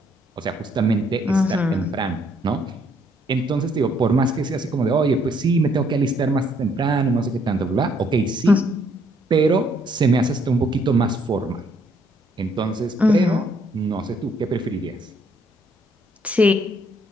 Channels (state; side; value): normal; both; correlation 0.68